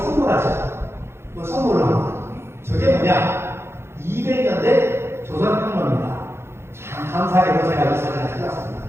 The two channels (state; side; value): late; left; 0.12 ms